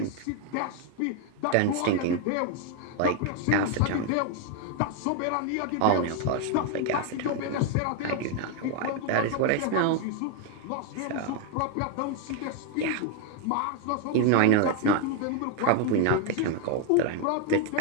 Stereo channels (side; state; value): both; different; correlation 0.01